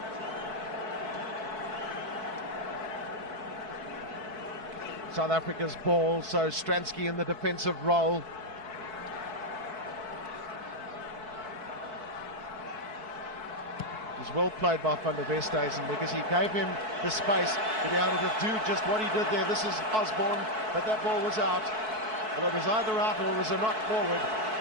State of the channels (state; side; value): late; left; 4.6 ms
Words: South Africa's ball, so Stransky in the defensive role. It was well played by Van der Westhuizen because he gave him the space to be able to do just what he did there. This is Osborne, but that ball was out. Well, it was either out or it was a knock forward.